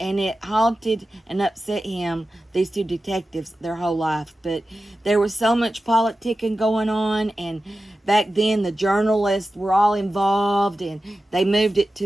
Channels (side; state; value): both; normal; correlation 0.94